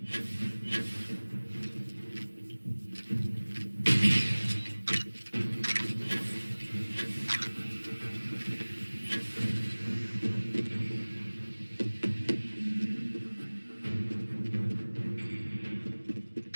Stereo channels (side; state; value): both; inverted; correlation -1.00